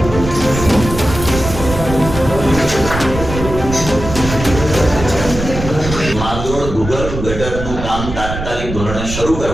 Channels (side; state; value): right; noise; rumble, 7 dB below the sound